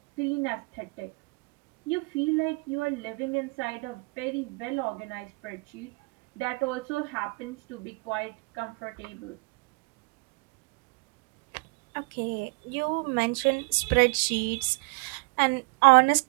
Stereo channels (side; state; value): left; quieter; 29.5 dB